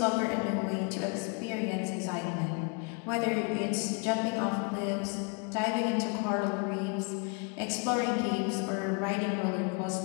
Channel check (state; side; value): quieter; right; 33.8 dB